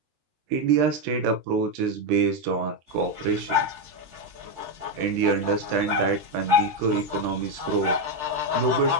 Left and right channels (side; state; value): left; late; 13 ms